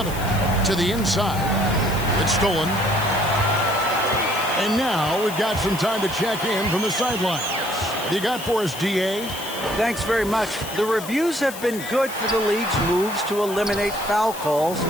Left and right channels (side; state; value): left; noise; hiss, 12 dB below the sound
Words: to the inside. It's stolen. And now we've got some time to check in from the sidelines. What do you got for us, DA? Thanks very much. The reviews have been good for the league's moves to eliminate foul calls